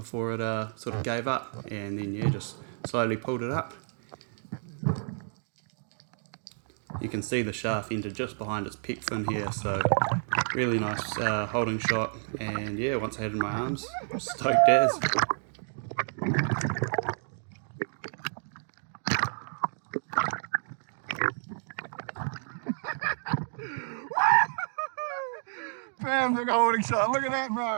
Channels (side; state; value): left; silent; digital silence